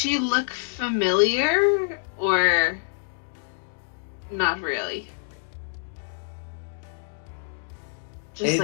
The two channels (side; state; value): right; silent; digital silence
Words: look familiar or not really?